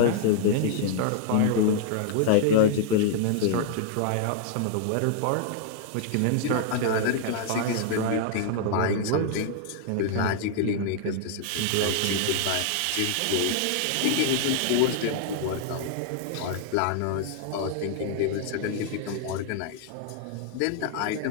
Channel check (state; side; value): different; both; correlation -0.01